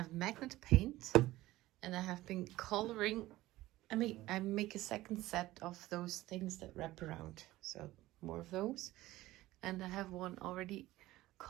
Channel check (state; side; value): quieter; left; 16.9 dB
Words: magnet paint, and I have been coloring. I make a second set of those things that wrap around, so more of those. And I have one already